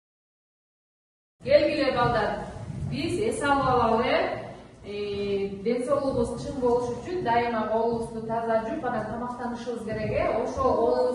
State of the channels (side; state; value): both; identical; correlation 1.00